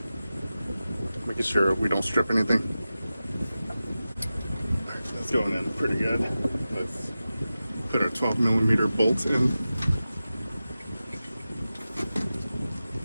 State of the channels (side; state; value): both; inverted; correlation -0.94